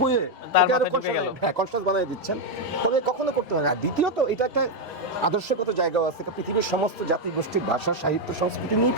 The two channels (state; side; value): normal; both; correlation 0.02